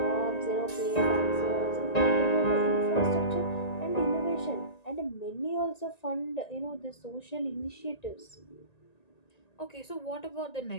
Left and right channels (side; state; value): right; late; 1.9 ms